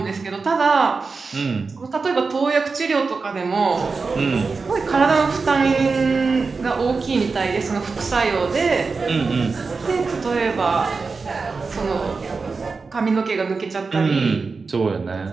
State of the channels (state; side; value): quieter; left; 4.5 dB